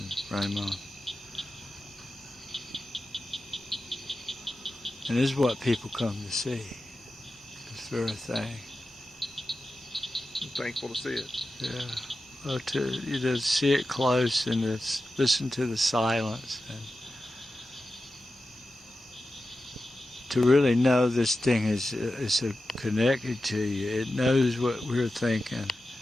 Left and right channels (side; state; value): both; normal; correlation 0.92